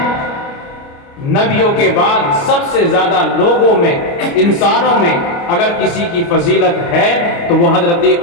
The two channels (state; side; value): late; right; 29 ms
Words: نبیوں کے بعد سب سے زیادہ لوگوں میں، انسانوں میں اگر کسی کی فضیلت ہے تو وہ حضرت